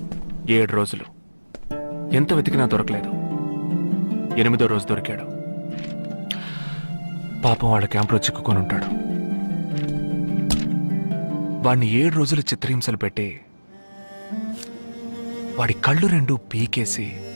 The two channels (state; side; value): inverted; both; correlation -1.00